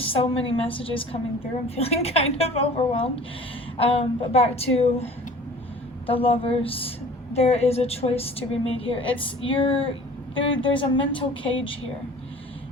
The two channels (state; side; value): normal; both; correlation 0.46